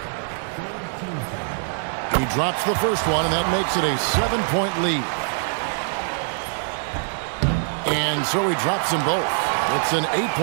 He drops the first one, and that makes it a 7-point lead. And so he drops them both. It's an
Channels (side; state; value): left; silent; 58 dB below the other